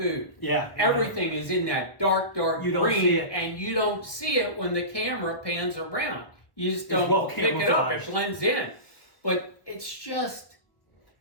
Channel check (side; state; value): right; late; 1.3 ms